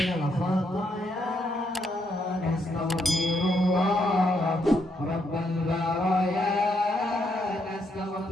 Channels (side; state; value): both; normal; correlation 0.76